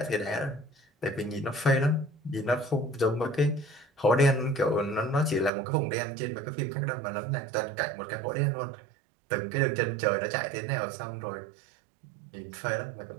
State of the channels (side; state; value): left; drops out; at 5.5 s